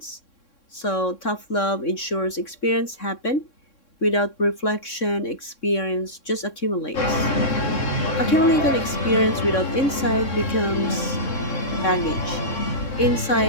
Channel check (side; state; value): right; late; 3.6 ms